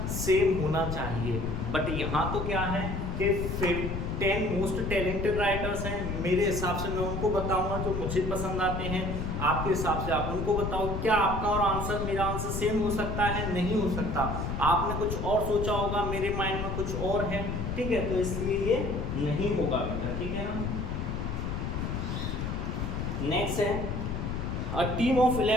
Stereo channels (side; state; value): left; noise; rumble, 3 dB below the sound